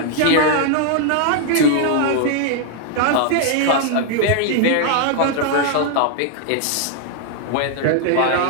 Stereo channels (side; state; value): both; different; correlation 0.00